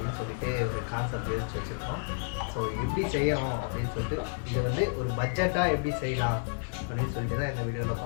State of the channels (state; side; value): silent; right; 57 dB below the other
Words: சொல்லிட்டு ஒரு கான்செப்ட் யோசிச்சு வச்சுருக்கோம். ஸோ எப்படி செய்யணும் அப்படின்னு சொல்லிட்டு, இது வந்து ஒரு பட்ஜெட்டாக எப்படி செய்யலாம் அப்படின்னு சொல்லிட்டு தான் இந்த வீடியோவில்